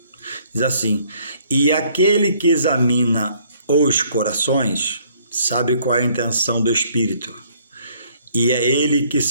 diz assim: e aquele que examina os corações sabe qual é a intenção do Espírito, e é ele que,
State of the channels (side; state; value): both; inverted; correlation -0.63